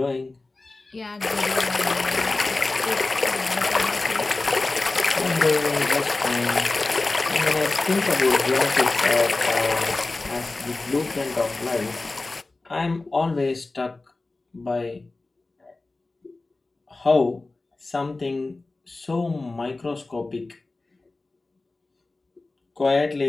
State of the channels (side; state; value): right; quieter; 3.3 dB